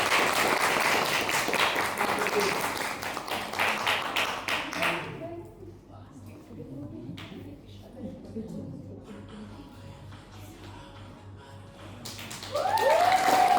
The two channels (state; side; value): identical; both; correlation 1.00